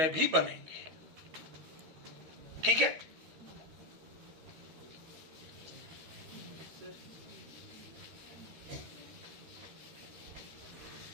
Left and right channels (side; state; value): left; late; 13 ms